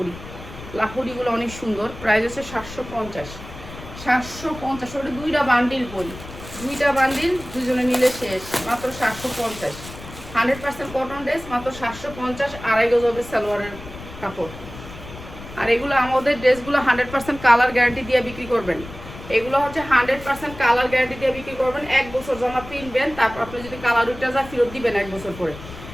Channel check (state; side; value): noise; left; rumble, 14 dB below the sound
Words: লাহোরিগুলো অনেক সুন্দর। প্রাইস হচ্ছে 750। ওটা 2টা বান্ডিল করি, 2টা বান্ডিল দুজনে নিলে শেষ, মাত্র 750। 100% কটন ড্রেস, মাত্র 750। 2.5 গজ হবে সালোয়ারের কাপড়। আর এগুলো আমাদের ড্রেসগুলো 100% কালার গ্যারান্টি দিয়ে বিক্রি করবেন। এগুলো হচ্ছে 100% কালার গ্যারান্টি দিয়ে বিক্রি করবেন। 1 বছর জামা পিনবেন, তারপর আপনি যদি কালার উঠে যা ফেরত দিবেন 1 বছর পরে,